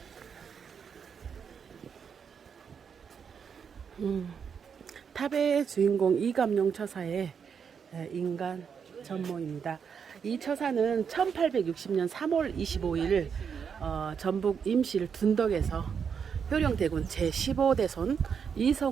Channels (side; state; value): left; quieter; 6.8 dB